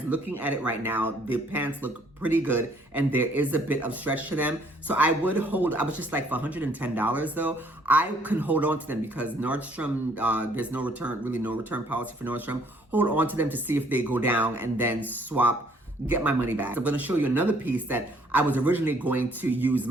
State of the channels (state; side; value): normal; both; correlation 0.62